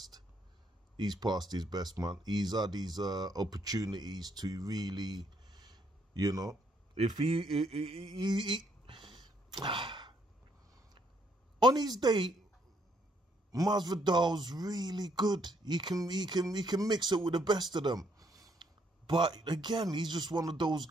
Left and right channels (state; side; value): normal; both; correlation 0.71